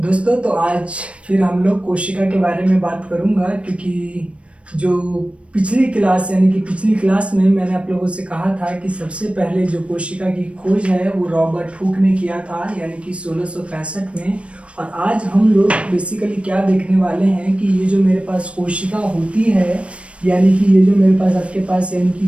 तो आज फिर हम लोग कोशिका के बारे में बात करूंगा क्योंकि जो पिछली क्लास में मैंने आप लोगों से कहा था कि सबसे पहले जो कोशिका की खोज है वो रॉबर्ट हुक ने किया था, यानी कि 1665 में। और आज हम लोग बेसिकली क्या देखने वाले हैं कि ये जो मेरे पास कोशिका होती है, यानी कि ये जो मेरे पास आपके पास यानी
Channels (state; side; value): late; left; 0.061 ms